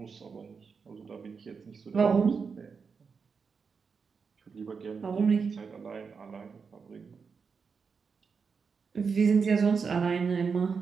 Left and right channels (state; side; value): quieter; left; 5.5 dB